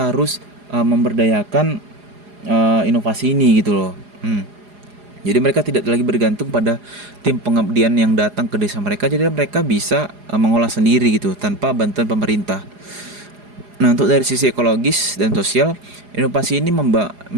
harus memberdayakan inovasi ini gitu loh. Jadi mereka tidak lagi bergantung pada tim pengabdian yang datang ke desa mereka, jadi mereka bisa mengolah sendiri gitu tanpa bantuan pemerintah. Nah, untuk dari sisi ekologis dan sosial, inovasi ini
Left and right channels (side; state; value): left; late; 4.9 ms